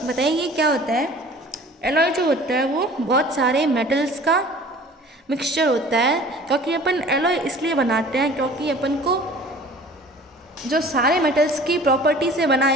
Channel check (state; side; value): normal; both; correlation 0.46